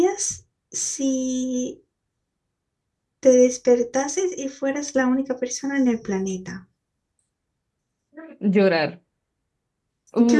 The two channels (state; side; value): identical; both; correlation 1.00